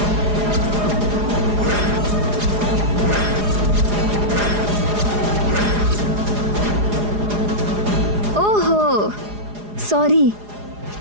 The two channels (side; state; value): left; late; 4.8 ms